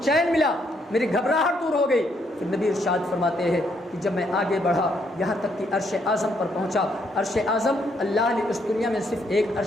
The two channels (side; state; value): both; normal; correlation 0.73